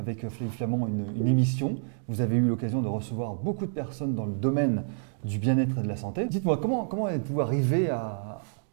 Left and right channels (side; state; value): left; silent; digital silence